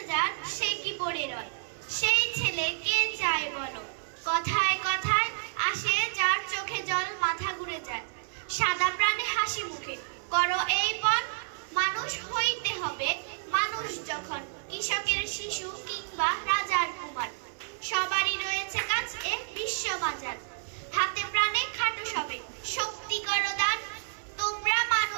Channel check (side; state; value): left; silent; 58 dB below the other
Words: যার সে কি পড়ে রয়। সেই ছেলে কে চায় বলো, কথায় কথায় আসে যার চোখে জল মাথা ঘুরে যায়। সাদা প্রাণে হাসি মুখে করো এই পণ, মানুষ হইতে হবে মানুষ যখন, কৃষকের শিশু কিংবা রাজার কুমার। সবারই রয়েছে কাজ এ বিশ্ব বাজার, হাতে প্রাণে খাটো সবে শক্তি করো দান। তোমরা